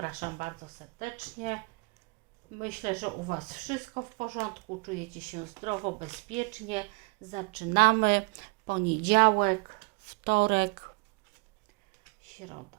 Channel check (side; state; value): left; quieter; 29.8 dB